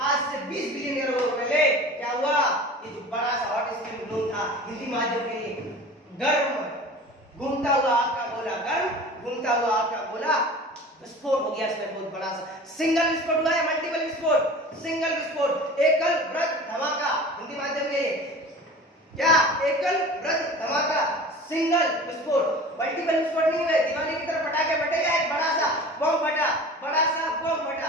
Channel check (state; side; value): normal; both; correlation 0.39